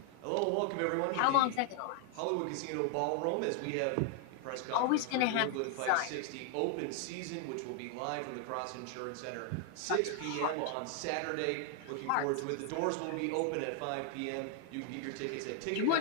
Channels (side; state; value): both; different; correlation 0.00